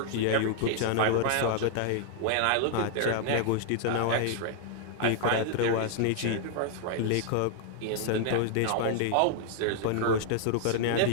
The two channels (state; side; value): different; both; correlation 0.00